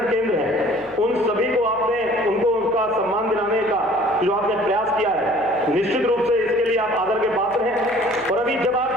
केंद्र हैं उन सभी को आपने उनको उनका सम्मान दिलाने का जो आपने प्रयास किया है, निश्चित रूप से इसके लिए आप आदर के पात्र हैं। और अभी जब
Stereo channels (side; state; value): left; noise; hum, 24 dB below the sound